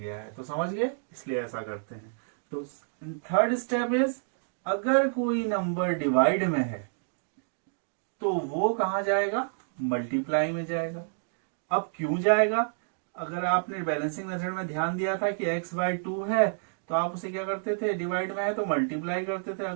है। तो समझ गए, इसलिए ऐसा करते हैं। तो थर्ड स्टेप इज अगर कोई नंबर डिवाइड में है तो वो कहाँ जाएगा, मल्टीप्लाई में जाएगा। अब क्यों जाएगा, अगर आपने बैलेंसिंग मेथड में ध्यान दिया था कि x/2 है तो आप उसे क्या करते थे, डिवाइड में है तो मल्टीप्लाई करते थे।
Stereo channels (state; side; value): silent; left; digital silence